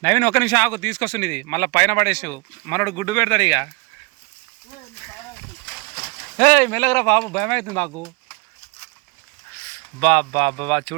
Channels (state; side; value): quieter; left; 28.0 dB